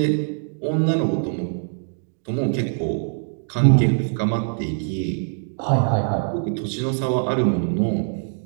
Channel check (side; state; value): left; silent; digital silence